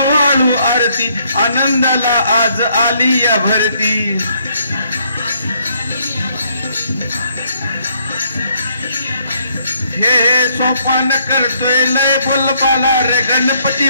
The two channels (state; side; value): inverted; both; correlation -0.69